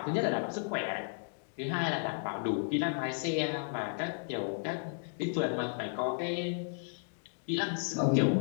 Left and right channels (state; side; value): silent; right; digital silence